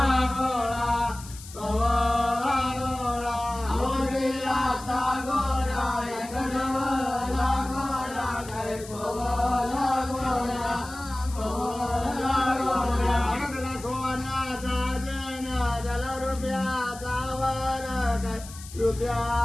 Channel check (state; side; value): noise; left; hiss, 16 dB below the sound